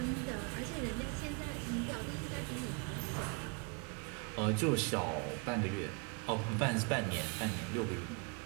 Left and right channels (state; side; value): quieter; left; 33.5 dB